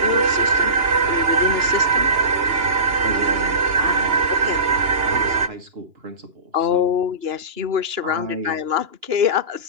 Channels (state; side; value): late; left; 2.9 ms